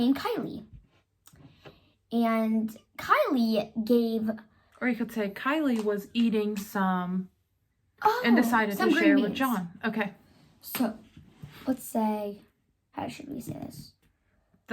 Kylie. And Kylie gave... Or you could say Kylie was eating some Oh, and decided some to green share with beans. John. Okay. So, let's say, how should we say this?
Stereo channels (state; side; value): identical; both; correlation 1.00